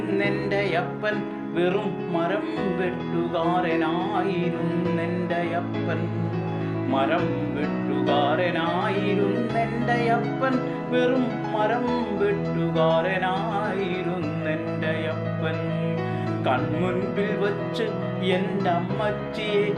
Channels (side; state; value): both; identical; correlation 1.00